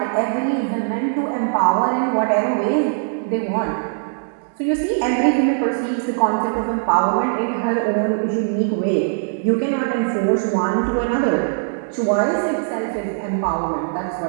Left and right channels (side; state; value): left; silent; digital silence